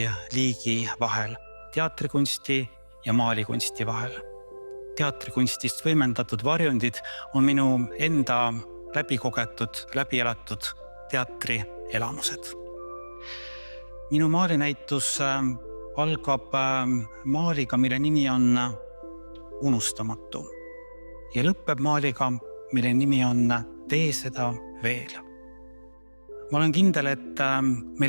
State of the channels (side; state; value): both; inverted; correlation -1.00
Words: vahel, teatrikunsti ja maalikunsti vahel. Teatrikunstist võimendatud varjundid on minu enda läbikogetud, läbielatud teatrielamused. Minu maalinäitus algab maaliga, mille nimi on Unustamatu ja lõpeb maaliga, mille nimi on Tee seda veel. Ma olen kindel, et